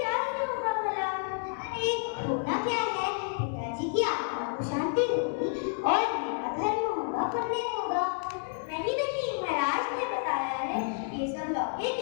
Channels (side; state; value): right; silent; digital silence